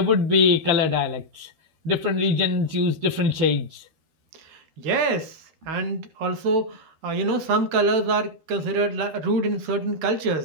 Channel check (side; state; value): left; late; 13 ms